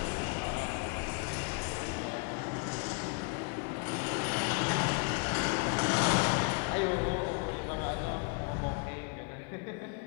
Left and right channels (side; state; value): right; quieter; 33.1 dB